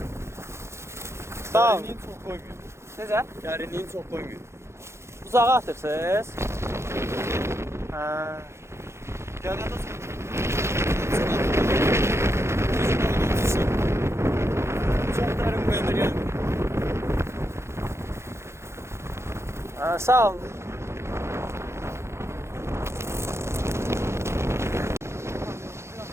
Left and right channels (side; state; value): left; late; 0.13 ms